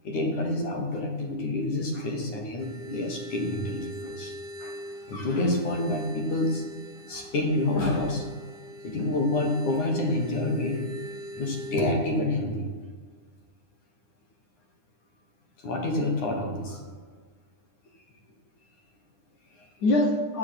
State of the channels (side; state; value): right; late; 9.8 ms